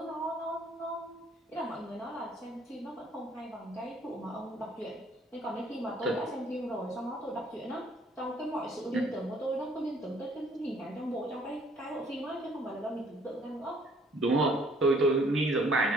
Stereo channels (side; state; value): both; normal; correlation 0.61